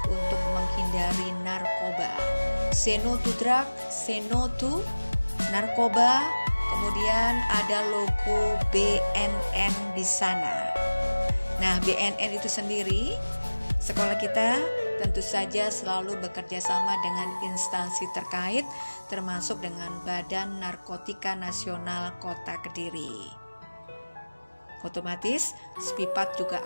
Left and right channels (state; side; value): inverted; both; correlation -1.00